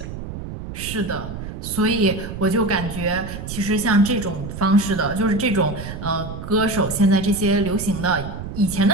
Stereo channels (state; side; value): noise; right; rumble, 9 dB below the sound